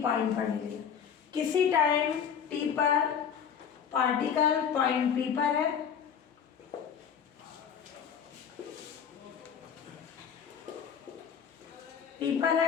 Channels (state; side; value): quieter; right; 7.6 dB